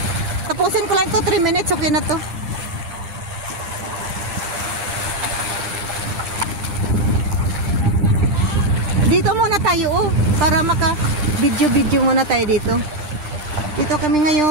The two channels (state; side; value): late; left; 9.9 ms